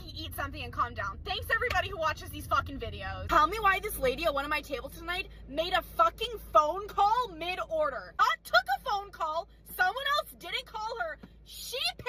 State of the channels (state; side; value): identical; both; correlation 1.00